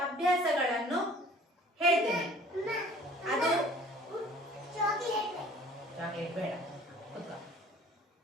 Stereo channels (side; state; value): both; normal; correlation 0.51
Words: ಅಭ್ಯಾಸಗಳನ್ನು ಹೇಳ್ತೇನೆ. ಅದು ಚಾಕ್ಲೇಟ್ ಬೇಡ, ಕೂತ್ಕೋ.